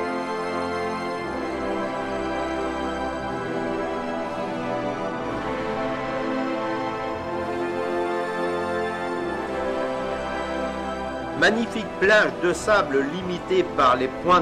Magnifique plage de sable limitée par les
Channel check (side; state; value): both; identical; correlation 1.00